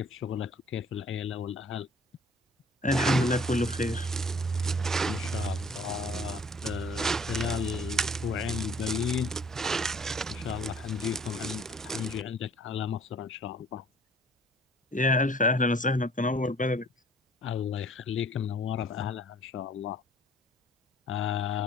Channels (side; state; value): both; normal; correlation 0.54